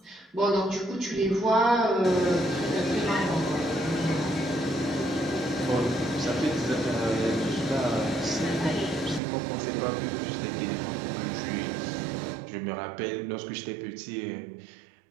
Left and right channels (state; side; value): drops out; left; at 9.2 s